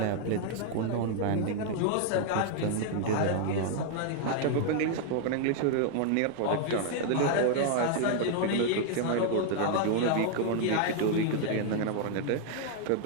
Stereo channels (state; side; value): different; both; correlation 0.00